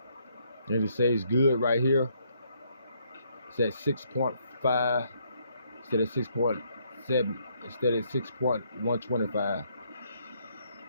and it says good right here. It's at 6.5 instead of 6.7 instead of 6.125.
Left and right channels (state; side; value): inverted; both; correlation -0.71